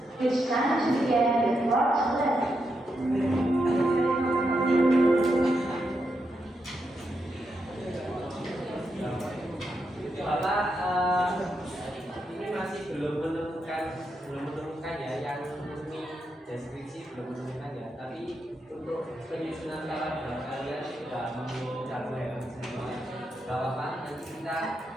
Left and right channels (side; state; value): both; normal; correlation 0.83